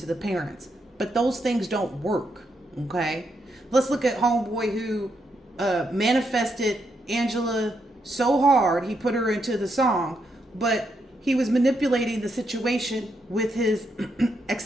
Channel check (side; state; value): both; normal; correlation 0.80